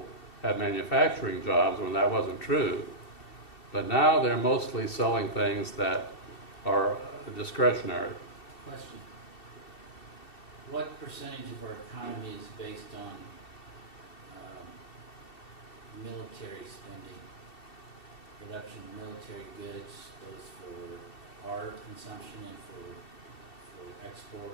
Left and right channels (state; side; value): late; right; 2.7 ms